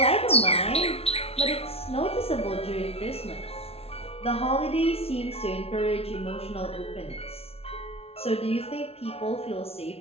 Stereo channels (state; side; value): late; right; 0.29 ms